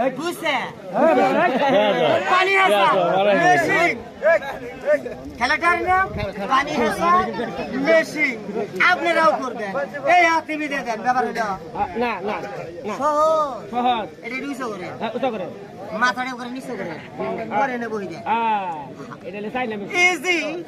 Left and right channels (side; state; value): both; identical; correlation 1.00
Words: হুসে পানি হাসা মেশিন। খেলাটার নাম পানি হাসা মেশিন। আপনারাও করবেন। এই হাতে দিয়ে দেন ব্যাপার হলো না না সহজ। সহজ এটা নিচে করে ওটা করে মাথাটা করে নিচে করে পরে এনে বহি দেন। এটা চাই না ইজি।